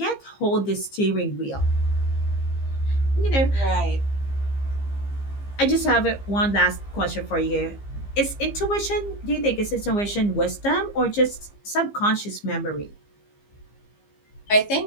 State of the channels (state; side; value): late; right; 15 ms